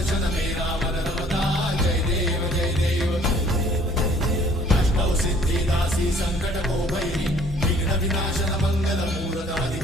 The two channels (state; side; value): normal; both; correlation 0.57